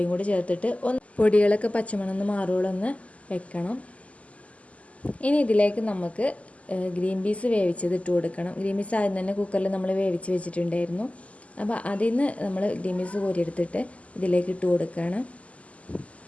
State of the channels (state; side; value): late; right; 0.067 ms